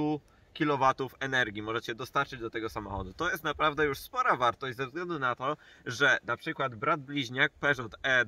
kW energii możecie dostarczyć do tego samochodu. To jest naprawdę już spora wartość ze względu na to, że na przykład brat bliźniak Peugeot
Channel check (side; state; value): both; identical; correlation 1.00